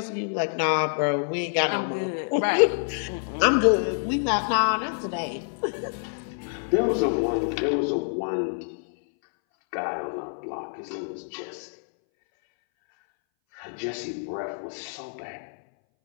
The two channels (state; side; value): silent; right; 60 dB below the other